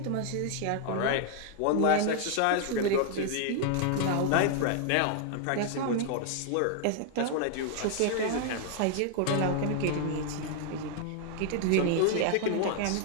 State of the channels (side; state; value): both; different; correlation 0.00